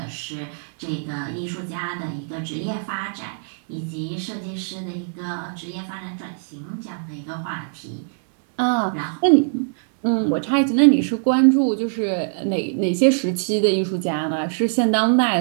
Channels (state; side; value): silent; left; digital silence